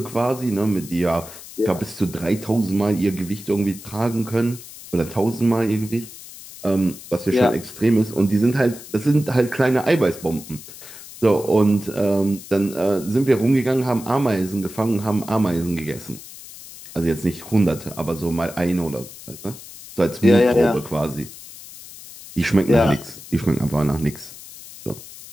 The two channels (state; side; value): noise; left; hiss, 16 dB below the sound